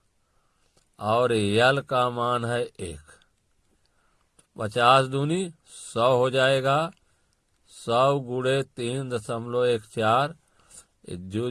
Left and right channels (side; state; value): both; identical; correlation 1.00